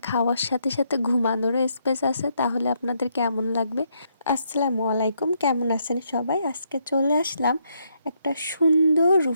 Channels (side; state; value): both; inverted; correlation -0.76